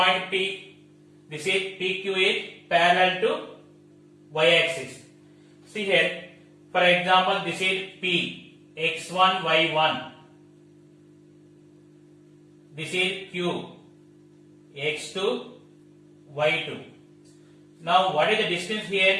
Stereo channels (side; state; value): both; identical; correlation 1.00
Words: P? This is PQ is parallel to y-axis. See here, For example, this is P, x1, y1. This is Q, x2, y2. Now, what is the distance